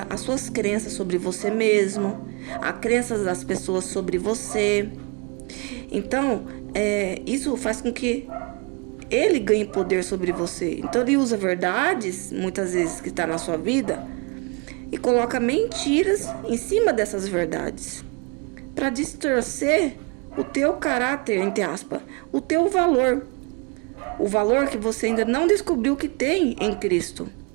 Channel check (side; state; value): left; quieter; 31.1 dB